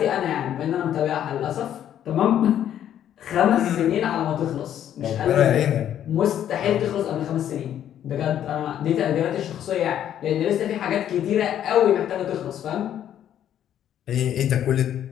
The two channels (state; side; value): quieter; right; 10.5 dB